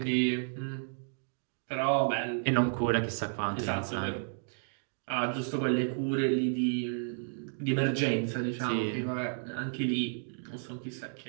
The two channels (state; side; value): silent; left; digital silence